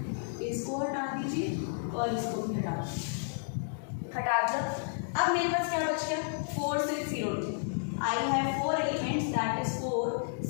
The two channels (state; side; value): silent; right; 57 dB below the other